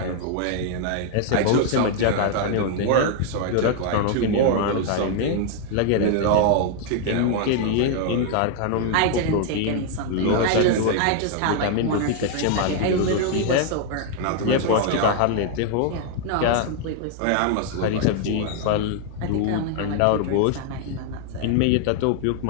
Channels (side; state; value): both; different; correlation 0.00